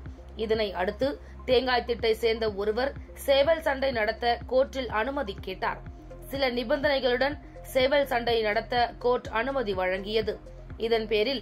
இதனை அடுத்து தேங்காய்த்திட்டை சேர்ந்த ஒருவர் சேவல் சண்டை நடத்த கோர்ட்டில் அனுமதி கேட்டார். சில நிபந்தனைகளுடன் சேவல் சண்டை நடத்த கோர்ட் அனுமதி வழங்கியது. இதன் பேரில்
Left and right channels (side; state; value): both; identical; correlation 1.00